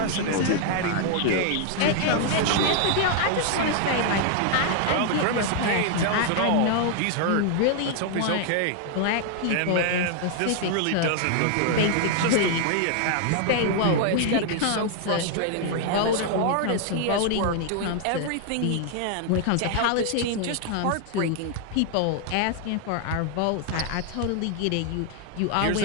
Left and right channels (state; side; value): different; both; correlation 0.00